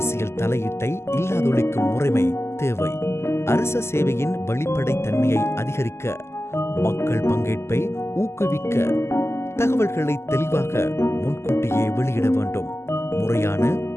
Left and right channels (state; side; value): late; right; 0.13 ms